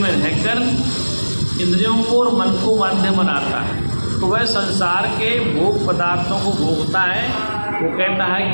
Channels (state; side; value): inverted; both; correlation -1.00